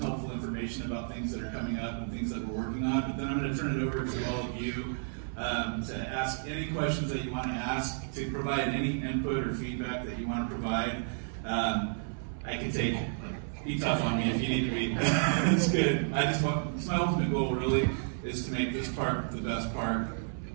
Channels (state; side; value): silent; left; 56 dB below the other